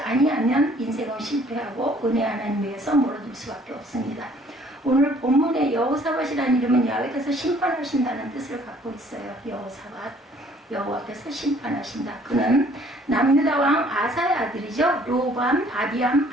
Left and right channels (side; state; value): both; normal; correlation 0.58